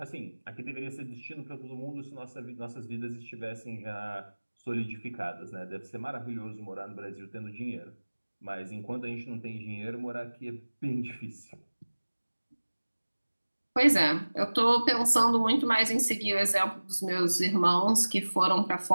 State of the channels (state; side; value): inverted; both; correlation -1.00